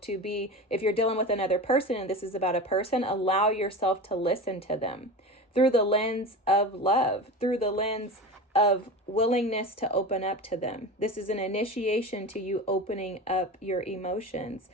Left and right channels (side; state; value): both; normal; correlation 0.29